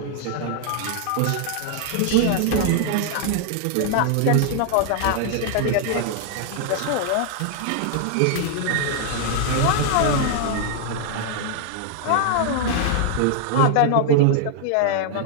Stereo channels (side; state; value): both; different; correlation 0.00